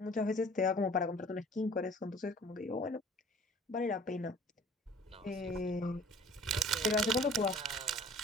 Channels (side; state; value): both; normal; correlation 0.50